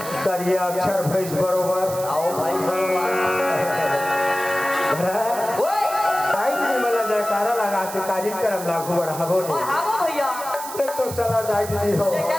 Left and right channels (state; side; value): noise; right; hiss, 11 dB below the sound